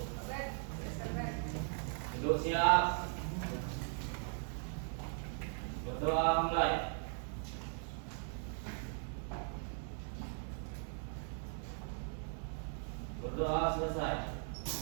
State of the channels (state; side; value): silent; left; 52 dB below the other